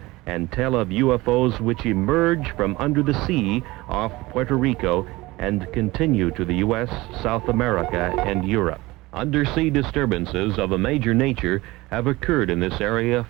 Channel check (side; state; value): left; quieter; 20.4 dB